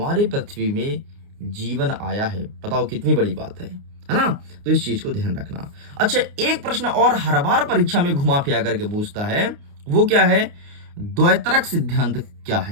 पृथ्वी में जीवन आया है। बताओ कितनी बड़ी बात है ना। तो इस चीज को ध्यान रखना। अच्छा, एक प्रश्न और हर बार परीक्षा में घुमा फिरा करके पूछता है, वो क्या है, द्वैतरक सिद्धांत क्या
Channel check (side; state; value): left; late; 29 ms